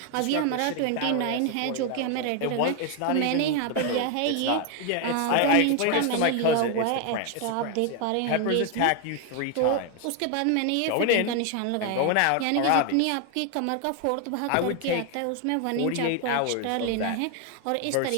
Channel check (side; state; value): both; different; correlation 0.01